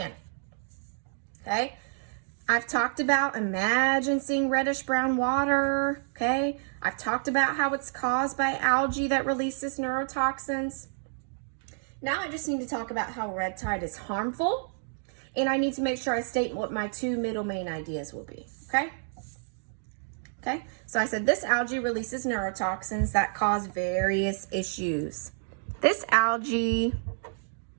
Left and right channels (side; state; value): left; silent; digital silence